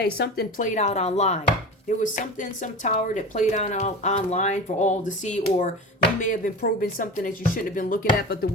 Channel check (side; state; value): both; normal; correlation 0.31